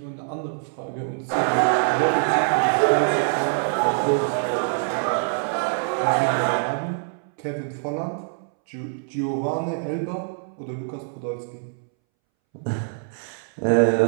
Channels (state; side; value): silent; left; 62 dB below the other